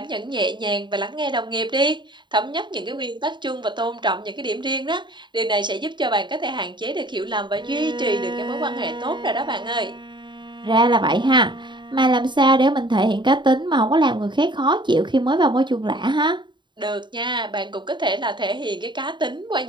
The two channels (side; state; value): left; late; 0.22 ms